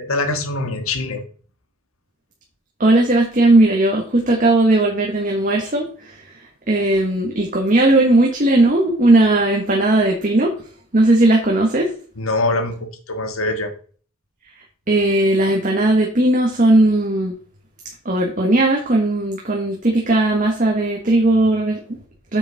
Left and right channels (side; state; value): both; normal; correlation 0.58